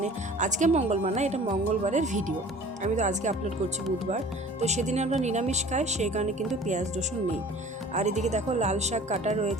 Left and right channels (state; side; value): normal; both; correlation 0.46